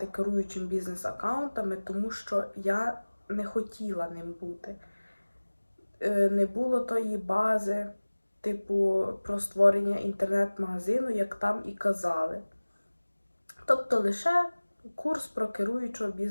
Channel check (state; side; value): inverted; both; correlation -1.00